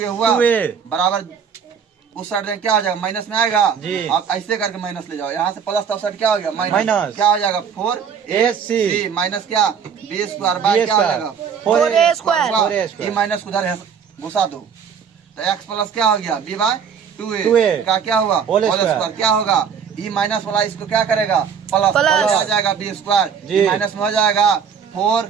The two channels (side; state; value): left; quieter; 7.1 dB